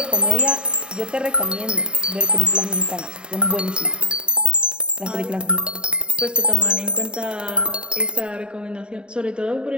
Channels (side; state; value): left; late; 0.051 ms